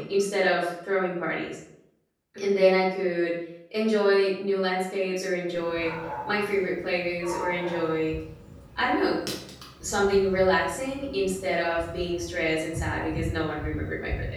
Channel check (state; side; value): identical; both; correlation 1.00